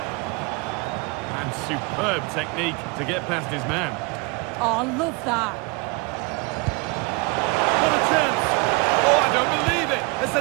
Superb technique to get past his man. Oh, I love that. What a chance! Oh, I don't believe it! A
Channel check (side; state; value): left; quieter; 28.3 dB